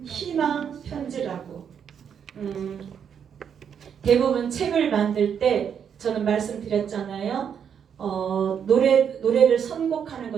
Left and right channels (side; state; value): left; quieter; 7.8 dB